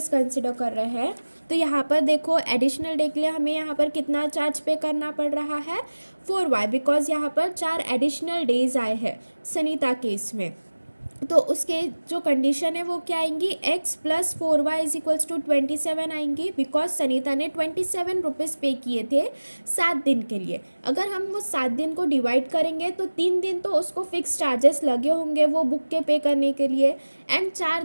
कंसिडर कर रहे हैं तो यहाँ पर देखो एडिशनल डे के लिए हमें यहाँ पर कितना चार्ज पे करना पड़ रहा है 4y, बिकॉज यहाँ पर 4 एडिशनल डेज आए हैं सनीता केस में. तो उसके जो कंडीशन है वो क्या आएंगी, x + 4y = 27 आएंगी बिकॉज सनीता ने 27 रुपीज़ पे किए थे 7 दिन के लिए. अगर हम वो 7 दिन को डिवाइड करेंगे तो 3 दिन तो उसको फिक्स चार्जेस लगे होंगे वो बुक के पे करने के लिए एंड 4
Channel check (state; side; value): inverted; both; correlation -1.00